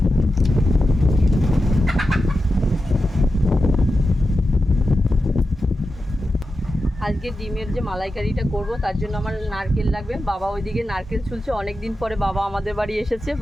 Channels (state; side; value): normal; both; correlation 0.91